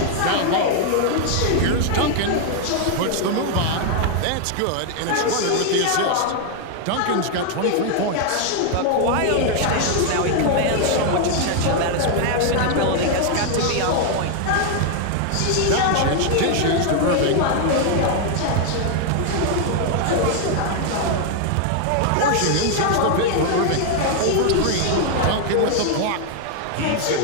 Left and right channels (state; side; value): different; both; correlation 0.00